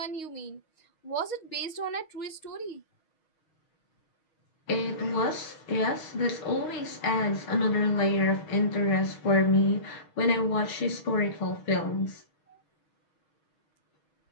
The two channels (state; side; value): late; right; 6.3 ms